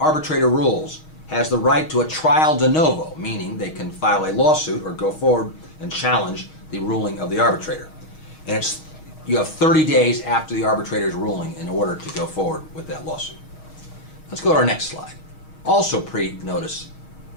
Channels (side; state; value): right; late; 6.4 ms